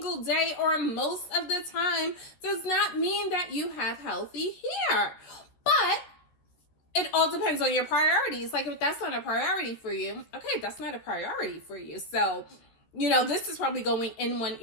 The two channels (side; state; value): right; late; 14 ms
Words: day or most of the time does not mean that you have healthy hair. But it all depends on your priorities. Like, if that's not a priority for you, okay, that's not a priority for you. So, this is probably going in one